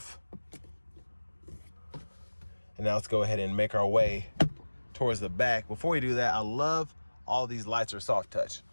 And now let's go ahead and make our way towards the back. Before we do that, I love all these lights are soft touch,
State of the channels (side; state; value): both; inverted; correlation -1.00